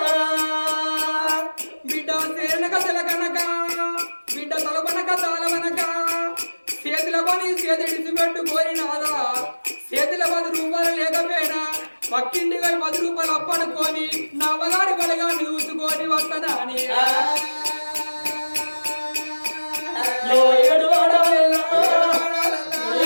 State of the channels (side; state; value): both; inverted; correlation -1.00